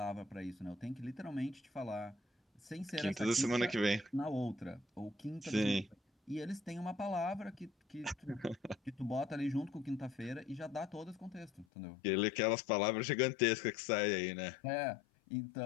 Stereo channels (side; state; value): right; drops out; at 11.7 s